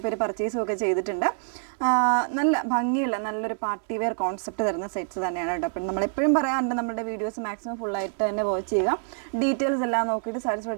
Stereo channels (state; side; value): silent; left; digital silence